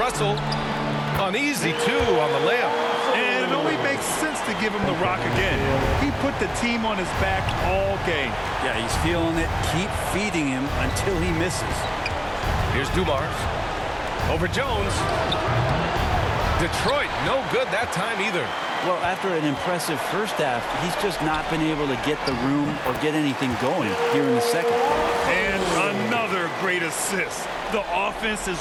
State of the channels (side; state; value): both; identical; correlation 1.00